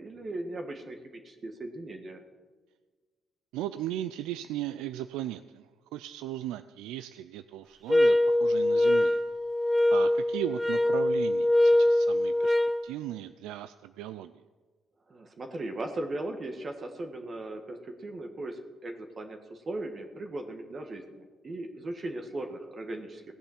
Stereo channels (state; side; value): normal; both; correlation 0.93